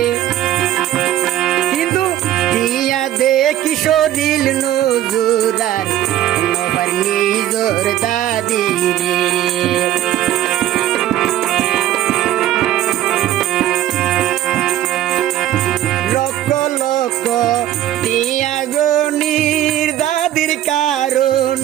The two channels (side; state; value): left; quieter; 13.0 dB